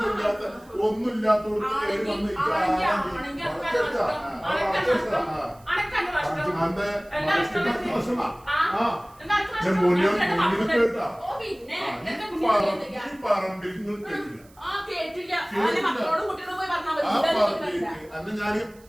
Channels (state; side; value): noise; right; hiss, 28 dB below the sound